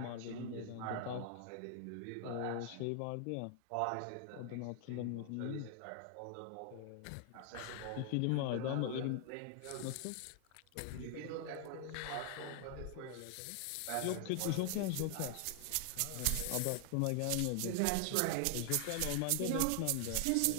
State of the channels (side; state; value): both; different; correlation 0.00